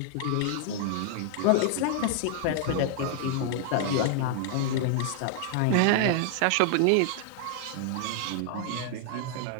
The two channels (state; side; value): different; both; correlation 0.00